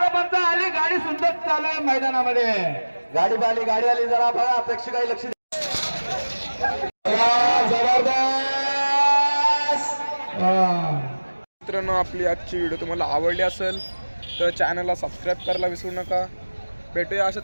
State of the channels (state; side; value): inverted; both; correlation -1.00